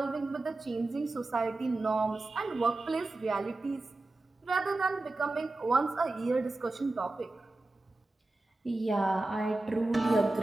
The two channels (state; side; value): quieter; left; 3.0 dB